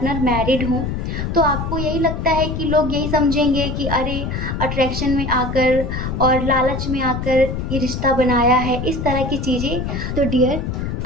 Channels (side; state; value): left; noise; rumble, 3 dB below the sound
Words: मैरिड हों, तो आपको यही लगता है कि लोग यही समझेंगे कि अरे अट्रैक्शन में आकर और लालच में आकर ये रिश्ता बनाया है, इस तरह की चीज़ें। तो डियर